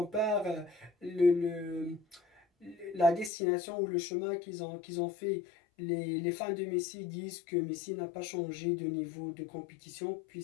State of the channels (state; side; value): drops out; right; at 3.3 s